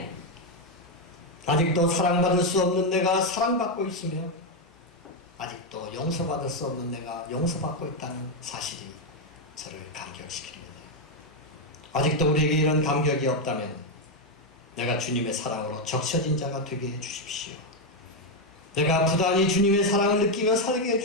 아직도 사랑받을 수 없는 내가 사랑받고 있으며 아직도 용서받을 수 없는 내가 용서받고 있다는 사실이 저를 감격시킵니다. 아직도 우리에게 이런 감격이 없다면 내가 주님의 사랑으로 적셔진 자가 되게 해주십시오. 내가 부단히 주님의 사랑을 느끼며 살게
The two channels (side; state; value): both; normal; correlation 0.04